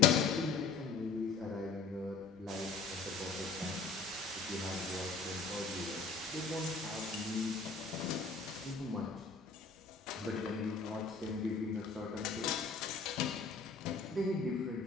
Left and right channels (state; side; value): quieter; right; 4.7 dB